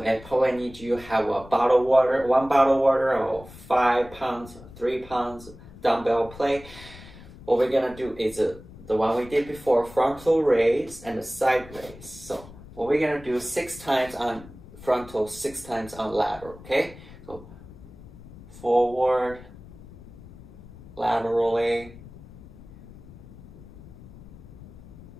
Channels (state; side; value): noise; left; rumble, 18 dB below the sound